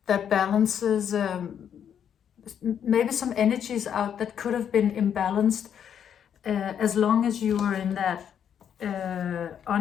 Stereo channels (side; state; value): right; quieter; 8.6 dB